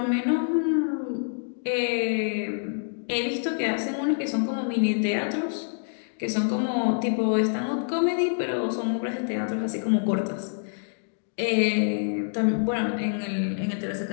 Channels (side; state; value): right; silent; digital silence